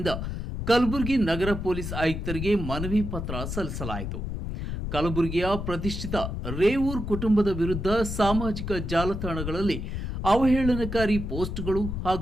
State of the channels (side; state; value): left; noise; rumble, 5 dB below the sound